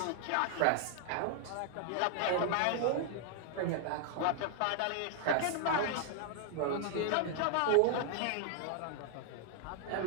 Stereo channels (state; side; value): different; both; correlation 0.00